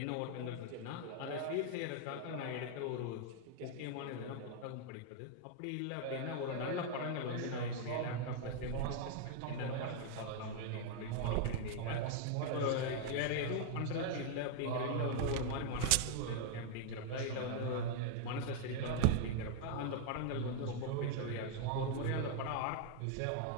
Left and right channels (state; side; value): different; both; correlation 0.00